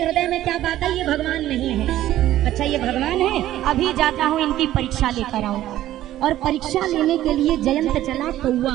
में क्या बात है? ये भगवान नहीं है। अच्छा ये भगवान है, अभी जाता हूँ इनकी परीक्षा लेकर आऊंगा। और परीक्षा लेने के लिए जयंत चला कौआ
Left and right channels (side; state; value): left; quieter; 13.6 dB